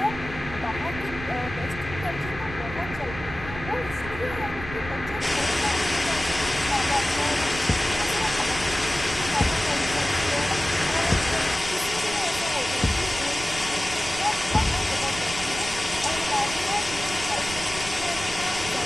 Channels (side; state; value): right; noise; rumble, 11 dB below the sound